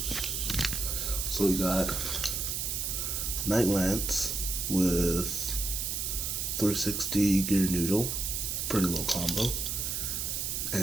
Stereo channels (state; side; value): noise; right; hiss, 1 dB below the sound